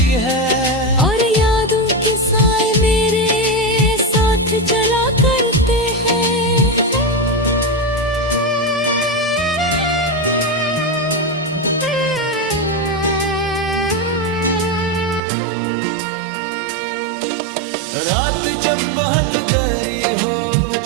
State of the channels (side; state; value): left; drops out; at 15.2 s